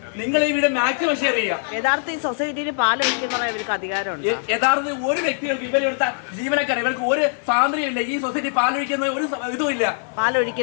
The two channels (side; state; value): right; silent; digital silence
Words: നിങ്ങൾ ഈ വീട് മാക്സിമം ഷെയർ ചെയ്യുക. യഥാർത്ഥ ഈ സൊസൈറ്റിയിൽ പാൽ ഒഴിക്കുന്ന ഇവർക്ക് അധികാരമുണ്ട്. യഥാർത്ഥത്തിൽ ഒരു വ്യക്തികൾക്ക് ഇവരെടുത്ത ജീവനക്കാർ ഇവർക്ക് ഒരു സ്വാതന്ത്ര്യമില്ല. ഈ സൊസൈറ്റി പാലൊഴിക്കുന്ന ഒരു ഇതുമില്ല.